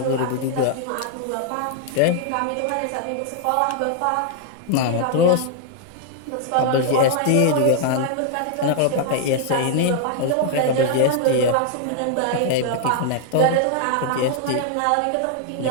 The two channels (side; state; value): both; different; correlation 0.00